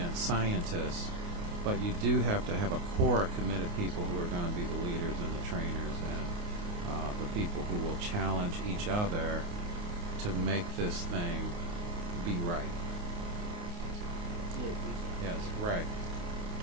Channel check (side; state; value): left; late; 29 ms